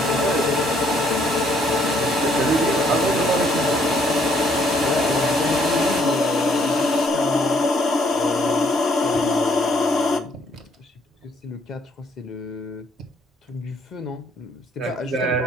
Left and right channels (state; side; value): normal; both; correlation 0.67